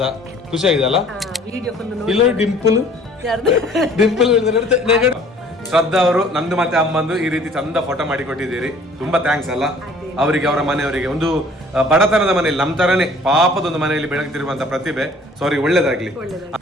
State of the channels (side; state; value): both; normal; correlation 0.53